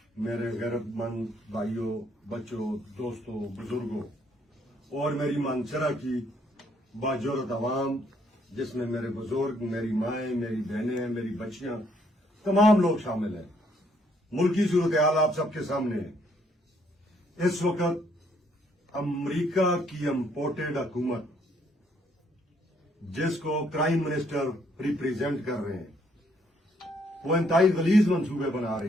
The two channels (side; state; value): both; normal; correlation 0.69